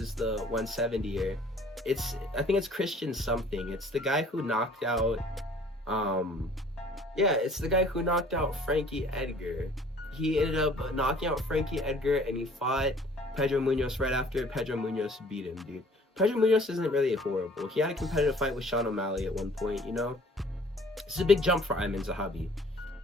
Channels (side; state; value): both; normal; correlation 0.54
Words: the 170er. I think it's Christian something. It's the guy who knocked out, it's the guy who knocked out Frankie Edgar. He ended up knocking out Frankie Edgar, and he fought Pedro Munhoz right after. Pedro Munhoz beat him, dude. Pedro Munhoz isn't really horrible. He had a competitive fight with Sean O'Malley at one point, you know? This is a big jump for Aieman Zahabi.